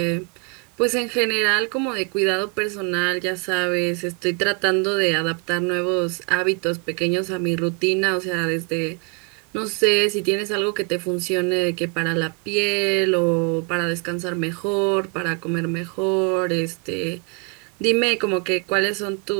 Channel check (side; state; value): left; quieter; 34.1 dB